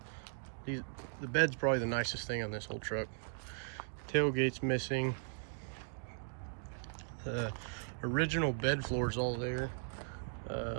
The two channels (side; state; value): left; silent; digital silence